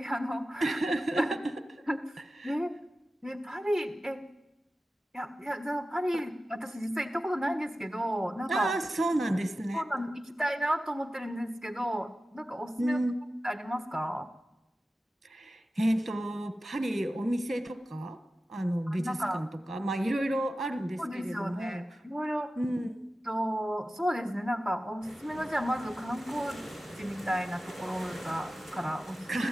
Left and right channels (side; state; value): both; normal; correlation 0.94